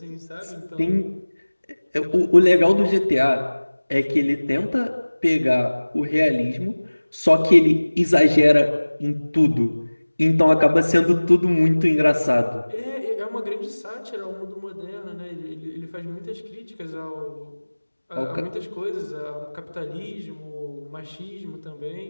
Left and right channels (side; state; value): both; inverted; correlation -1.00